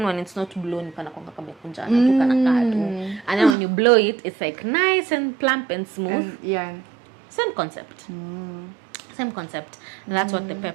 when it's not blown, and then when you blow it, it's like nice and plump and smooth. Same concept. Same concept. That's what the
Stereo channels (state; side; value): drops out; left; at 3.6 s